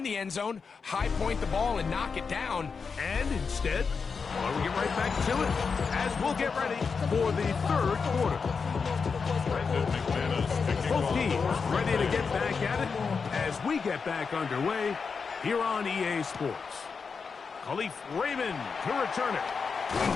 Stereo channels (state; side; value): quieter; right; 5.3 dB